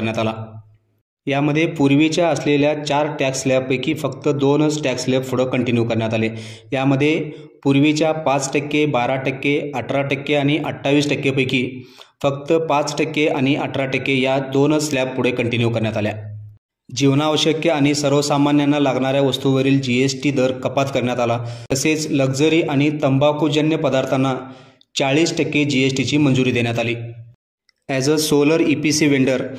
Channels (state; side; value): identical; both; correlation 1.00